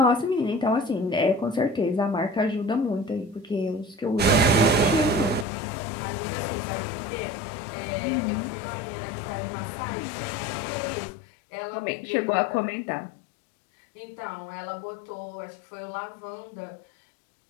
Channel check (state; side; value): drops out; right; at 5.5 s